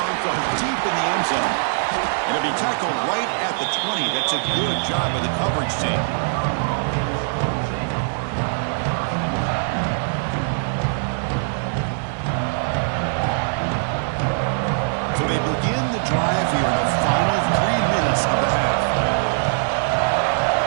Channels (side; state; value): left; silent; digital silence